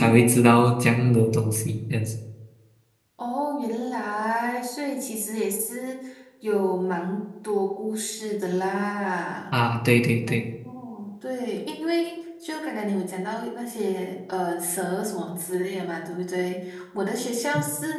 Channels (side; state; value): both; identical; correlation 1.00